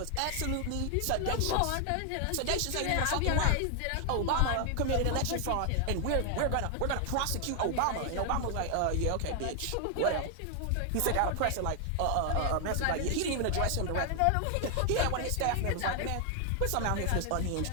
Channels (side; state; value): both; different; correlation 0.00